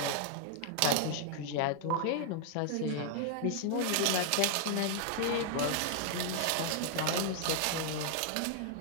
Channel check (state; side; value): different; both; correlation -0.01